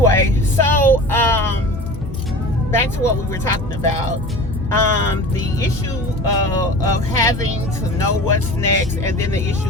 so back to what we were talking about. The issue of having to know what's next, and then the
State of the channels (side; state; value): both; normal; correlation 0.37